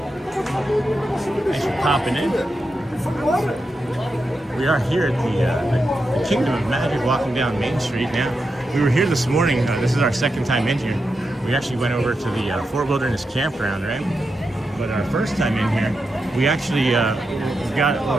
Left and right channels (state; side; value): normal; both; correlation 0.87